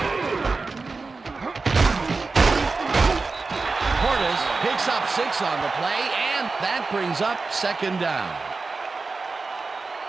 Portis picks up 6 on the play, and that brings up second down.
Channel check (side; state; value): left; quieter; 4.0 dB